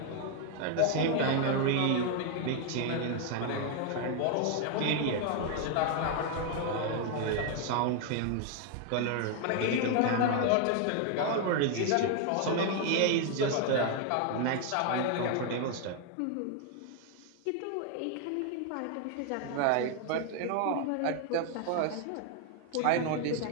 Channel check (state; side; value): different; both; correlation 0.01